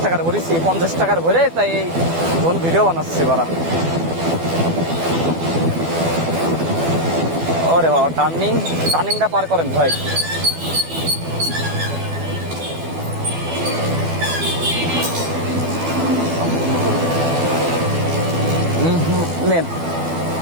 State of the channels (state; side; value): late; left; 12 ms